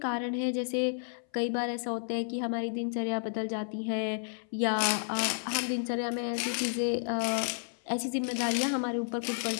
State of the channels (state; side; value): silent; right; 57 dB below the other